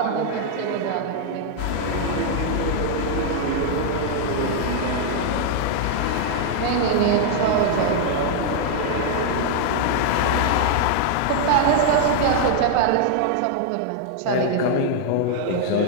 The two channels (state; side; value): different; both; correlation 0.00